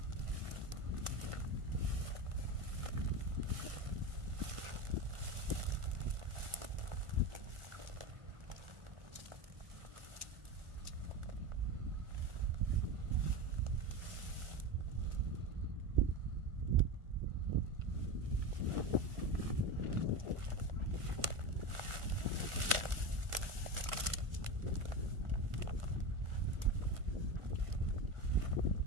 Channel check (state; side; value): late; left; 1.4 ms